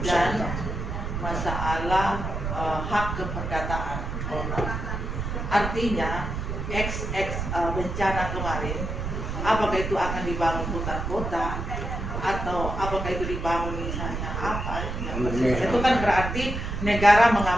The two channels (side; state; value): right; noise; rumble, 4 dB below the sound